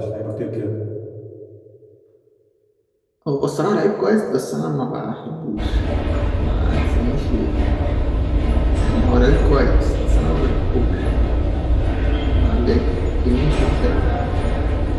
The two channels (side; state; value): both; identical; correlation 1.00